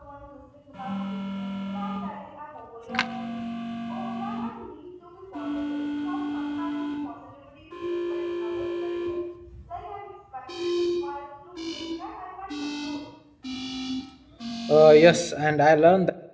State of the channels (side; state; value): both; identical; correlation 1.00